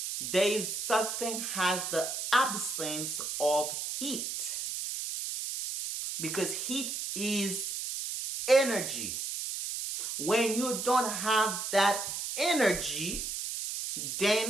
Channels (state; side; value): noise; right; hiss, 4 dB below the sound